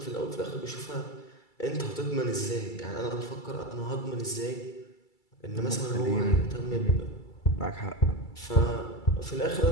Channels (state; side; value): late; right; 2.3 ms